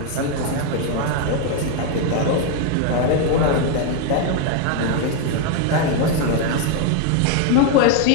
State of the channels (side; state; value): both; different; correlation 0.01